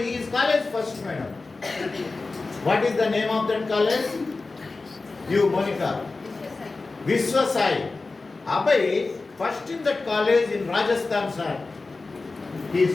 is college first, madam. What is the name of that college? You, Monica. Vishwasai. Abhay, first in that college in Rajasthan, sir. He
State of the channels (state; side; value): quieter; right; 3.7 dB